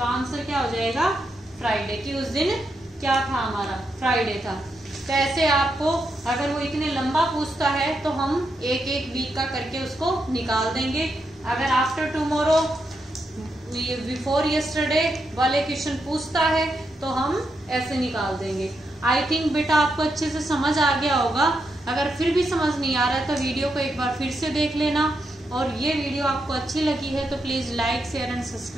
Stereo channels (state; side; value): normal; both; correlation 0.83